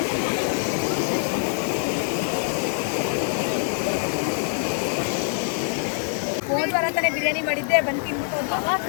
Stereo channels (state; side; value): silent; right; 61 dB below the other